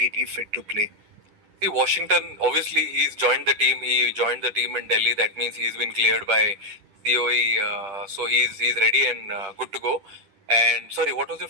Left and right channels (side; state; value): left; late; 10 ms